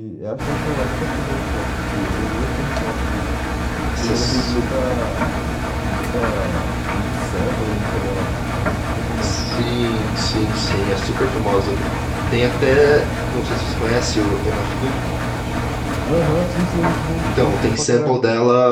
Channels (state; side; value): identical; both; correlation 1.00